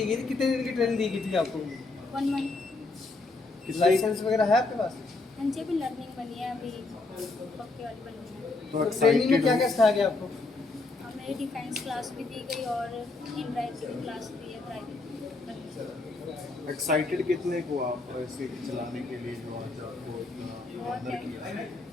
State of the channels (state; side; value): quieter; right; 3.4 dB